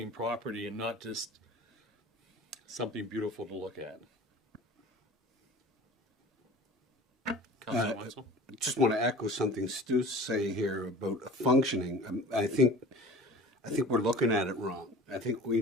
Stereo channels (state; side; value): normal; both; correlation 0.40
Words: property and not just something beautiful to look at. Councillor Wenzel? I just want to echo something Stu's saying here about functioning. I think we're looking at it wrong. I think we